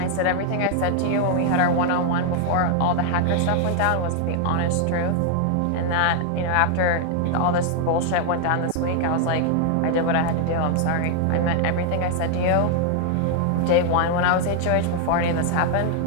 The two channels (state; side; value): different; both; correlation 0.00